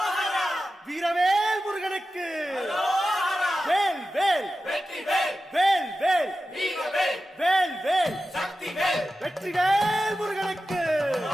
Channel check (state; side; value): normal; both; correlation 0.93